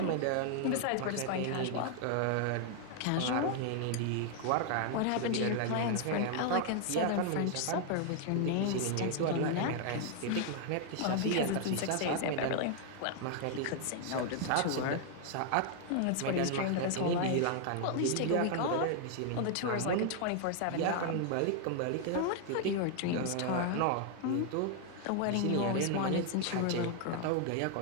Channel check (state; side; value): different; both; correlation 0.00